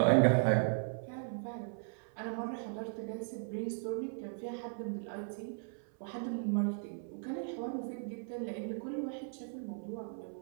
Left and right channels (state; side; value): silent; left; 53 dB below the other